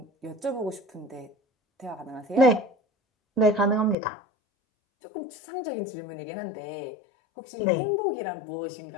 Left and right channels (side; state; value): right; drops out; at 4.0 s